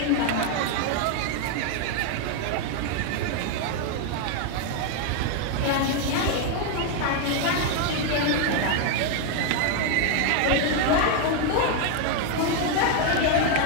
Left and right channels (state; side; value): different; both; correlation 0.00